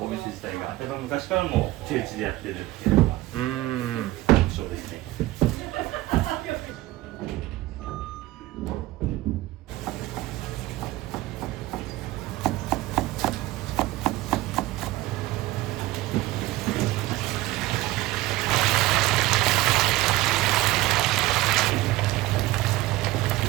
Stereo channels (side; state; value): left; quieter; 17.6 dB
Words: お店自体がやっぱ昔からも手打ちでやってるっていうのが特徴ですね。